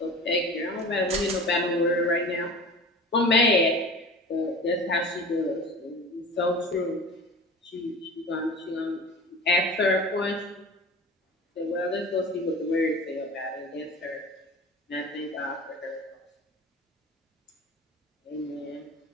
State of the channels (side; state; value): both; normal; correlation 0.37